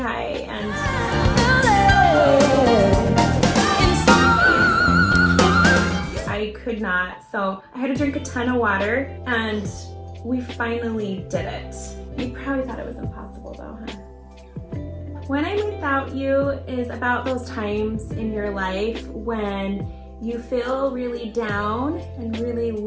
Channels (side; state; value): both; identical; correlation 1.00